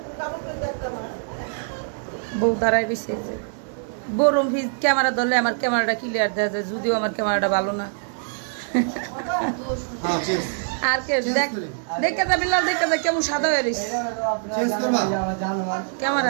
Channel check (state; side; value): silent; left; digital silence